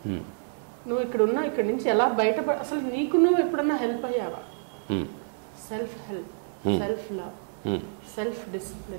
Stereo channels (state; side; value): silent; left; digital silence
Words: నువ్వు ఇక్కడ నుంచి ఎలా అసలు నీకు నువ్వు ఎప్పుడన్నా హెల్ప్ అయ్యావా? Self help, self love, self